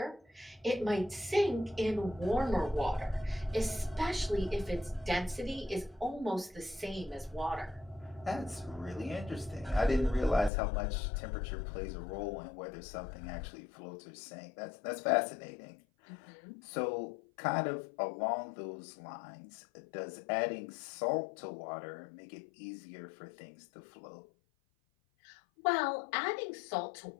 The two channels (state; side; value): drops out; right; at 10.5 s